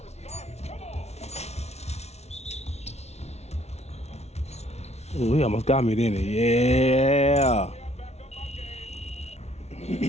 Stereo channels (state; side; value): late; right; 0.31 ms